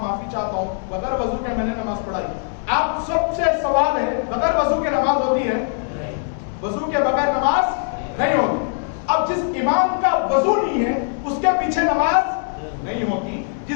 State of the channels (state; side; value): silent; right; 65 dB below the other